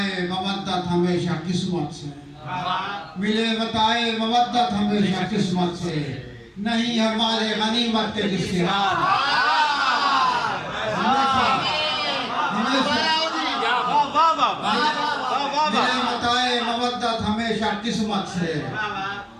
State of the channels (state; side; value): identical; both; correlation 1.00